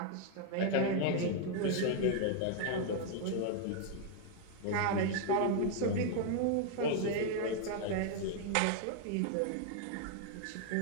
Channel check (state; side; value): different; both; correlation 0.00